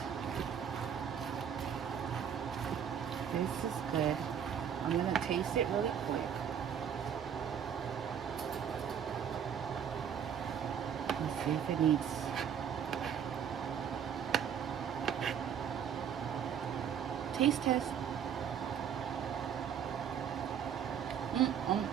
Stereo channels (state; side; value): quieter; left; 8.2 dB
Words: this is good. I'm going to taste it really quick. Let's see if it needs... Taste test.